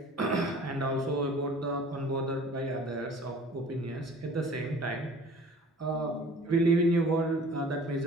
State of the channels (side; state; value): both; normal; correlation 0.47